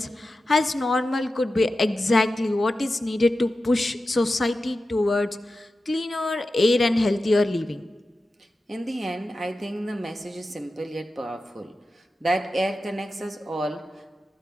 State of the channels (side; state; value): both; normal; correlation 0.93